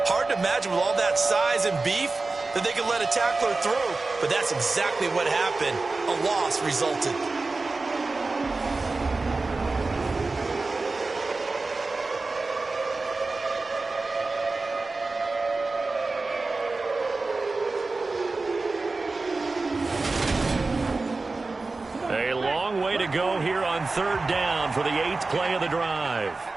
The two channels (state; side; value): quieter; left; 3.6 dB